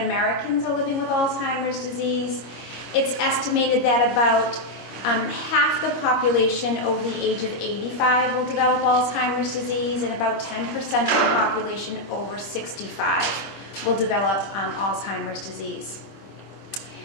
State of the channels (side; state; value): right; late; 26 ms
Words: are living with Alzheimer's disease. It's estimated that about half the population over the age of 85 will develop Alzheimer's disease, and about 10% of the population over 65 will develop Alzheimer's disease.